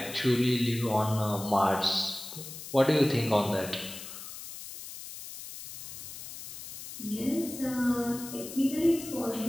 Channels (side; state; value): left; noise; hiss, 11 dB below the sound